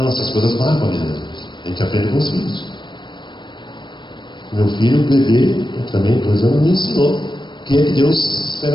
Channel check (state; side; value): late; right; 0.22 ms